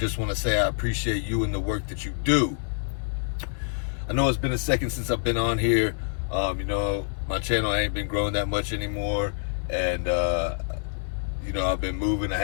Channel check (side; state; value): right; silent; digital silence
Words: want to say I appreciate you and the work that you do. I know it's been a second since I've been on here. My channel ain't been growing that much anymore, and I've been moving. I